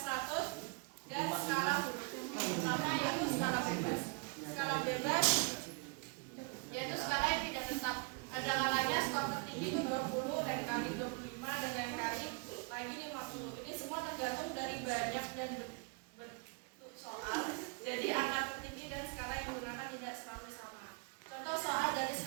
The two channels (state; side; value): quieter; left; 32.0 dB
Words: dan skala huruf. Yang pertama yaitu skala bebas. Skala bebas yaitu skala yang tidak tetap. Ada kalanya skor tertinggi itu 20, lain kali 25, dan lain kali lagi 50. Ini semua tergantung dari banyak dan bentuk soal. Jadi angka tertinggi dan skala yang digunakan tidak selalu sama. Contoh soal dari